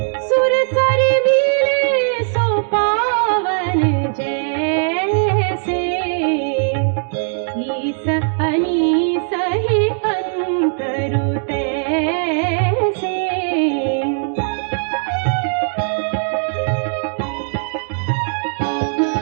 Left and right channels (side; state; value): left; silent; digital silence